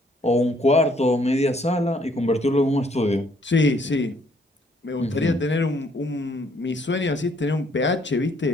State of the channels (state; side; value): normal; both; correlation 0.66